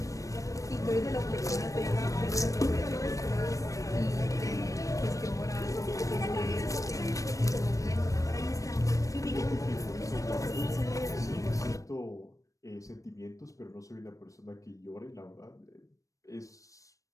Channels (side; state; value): right; late; 0.16 ms